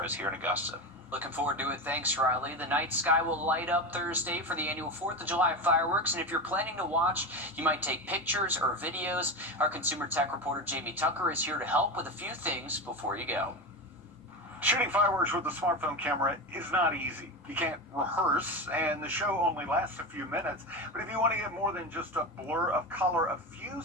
us here in Augusta. Looking forward to it. Thanks, Riley. The night sky will light up Thursday for the annual 4th of July fireworks, and if you're planning to watch, you might take pictures or videos. Our consumer tech reporter, Jamie Tucker, is here to help with a few things before you go. Shooting fireworks with a smartphone camera is not easy. You can't rehearse, and the show only lasts a few minutes. But if you want to get more than just a blur of color, a few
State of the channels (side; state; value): both; normal; correlation 0.21